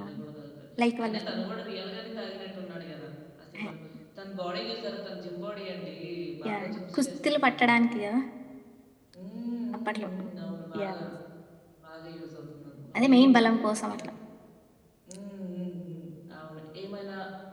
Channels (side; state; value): both; identical; correlation 1.00